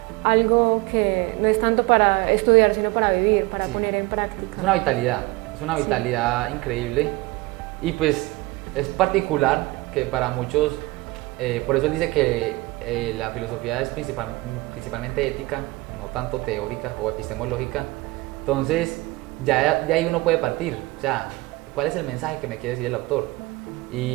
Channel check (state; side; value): quieter; left; 21.5 dB